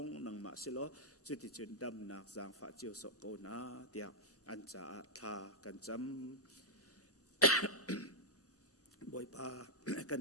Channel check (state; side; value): normal; both; correlation -0.05